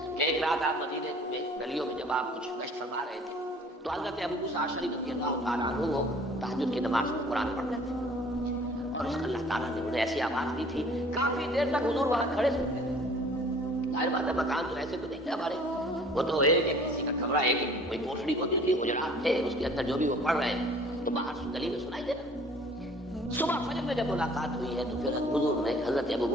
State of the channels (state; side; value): normal; both; correlation 0.51